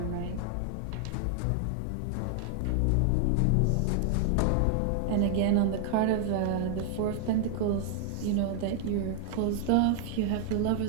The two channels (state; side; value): different; both; correlation 0.00